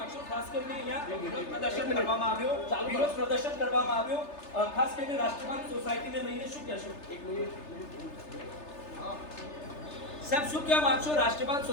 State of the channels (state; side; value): late; right; 3.3 ms